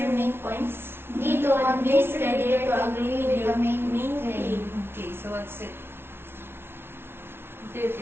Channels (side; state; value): left; late; 0.11 ms